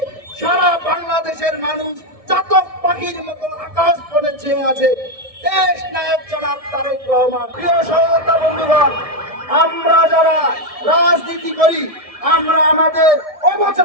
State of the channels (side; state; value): left; late; 1.7 ms